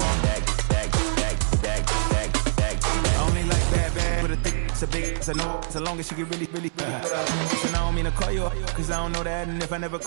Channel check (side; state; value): left; silent; 62 dB below the other